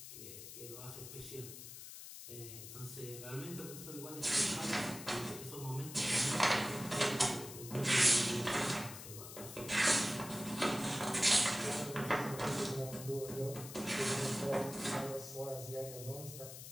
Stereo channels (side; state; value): left; noise; hiss, 12 dB below the sound